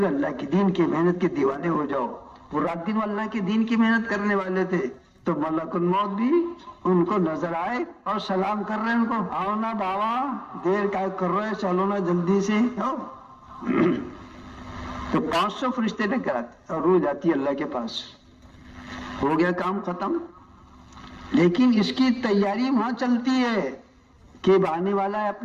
اللہ کے دین کی محنت کے دیوانے ہو جاؤ. وہ رات دن اللہ کے دین کی محنت کرنے والے تھے, تو ملک الموت بھی ان کو نظر آئے اور سلام کر رہے ہیں ان کو, آؤ نا بابا, دیر کا کر رہے, چلو نا جلدی سے. تو 500 فرشتے لے کر آتے اور روح جاتی ہے اللہ کے پاس. ہو گیا کام ختم. لیکن اس کی تیاری وہاں چلتی ہے کہ آنے والا ہے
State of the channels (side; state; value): both; identical; correlation 1.00